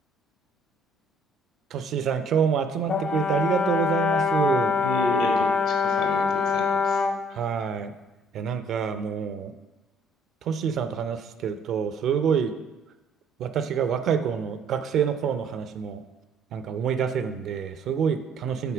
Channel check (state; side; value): normal; both; correlation 0.60